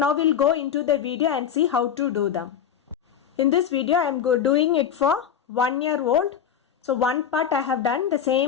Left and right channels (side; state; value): right; quieter; 8.6 dB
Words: we'll go into the video and see how to do them. In this video I am doing it for 1 year old. So one part I have done the